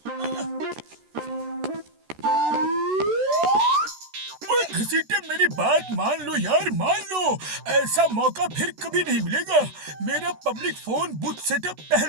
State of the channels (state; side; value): late; left; 13 ms